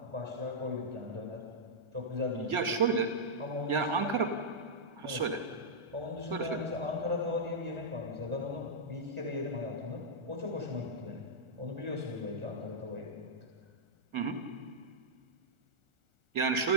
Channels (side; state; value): left; late; 1.4 ms